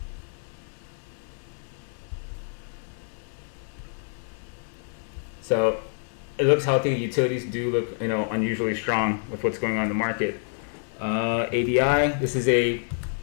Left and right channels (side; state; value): right; silent; 60 dB below the other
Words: So it looks healthy. Utilities do look unusually strong with what's going on in the market. ADI, this is a